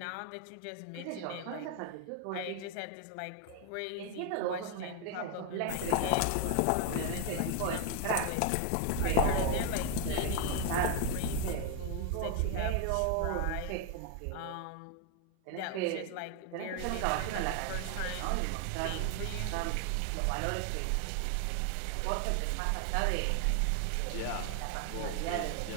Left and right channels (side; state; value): both; different; correlation 0.01